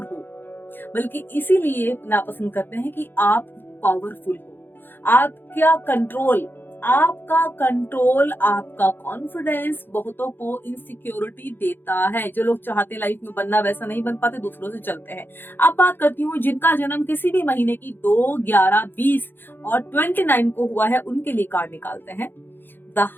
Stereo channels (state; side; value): late; right; 0.099 ms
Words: हो, बल्कि इसीलिए नापसंद करते हैं कि आप पावरफुल हो। आपका कंट्रोल, आपका कॉन्फिडेंस बहुतों को इनसिक्योरिटी देता है। जो लोग चाहते लाइफ में बनना वैसा नहीं बन पाते, दूसरों से चलते हैं। अब बात करती हूँ जिनका जन्म किसी भी महीने की 2, 11, 20 और 29 को हुआ है, उनके लिए कार्ड निकालते हैं। द